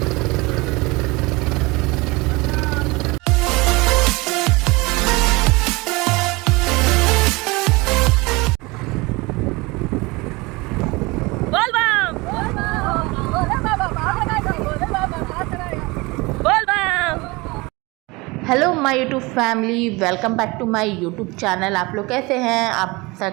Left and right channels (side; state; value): left; quieter; 24.2 dB